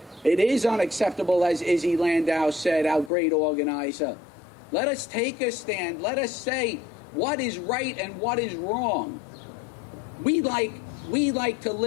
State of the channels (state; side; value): drops out; right; at 3.1 s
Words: It is unacceptable, as Izzy Landau said, our great organizer. Let us take a stand. Let us say what is right and what is wrong. We like to